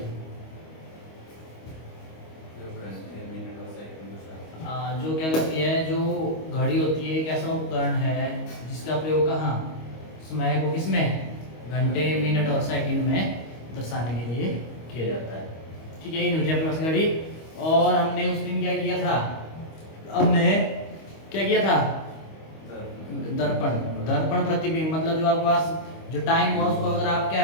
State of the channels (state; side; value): late; right; 25 ms